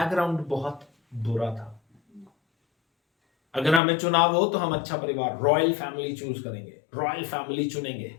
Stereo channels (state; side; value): drops out; right; at 3.8 s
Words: बहुत बुरा था। अगर हमें चुनाव हो तो हम अच्छा परिवार, रॉयल फैमिली चूज करेंगे, रॉयल फैमिली चुनेंगे।